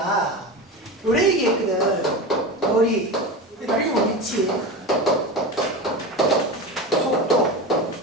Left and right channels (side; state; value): both; normal; correlation 0.25